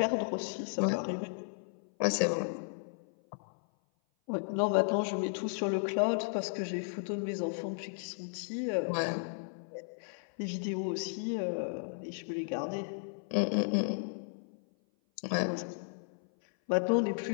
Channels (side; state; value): right; silent; 55 dB below the other